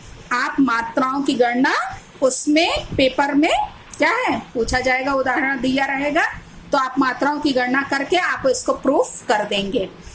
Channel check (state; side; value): identical; both; correlation 1.00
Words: आप मात्राओं की गणना उसमें पेपर में क्या है पूछा जाएगा, उदाहरण दिया रहेगा, तो आप मात्राओं की गणना करके आप इसको प्रूफ कर देंगे।